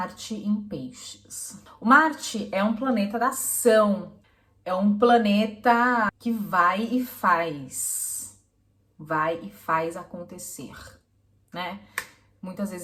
em Peixes. O Marte é um planeta da ação, é um planeta que vai e faz acontecer, né? Muitas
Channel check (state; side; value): identical; both; correlation 1.00